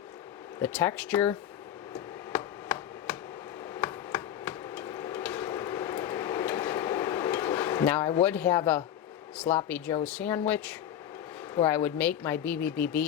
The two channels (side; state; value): right; quieter; 10.6 dB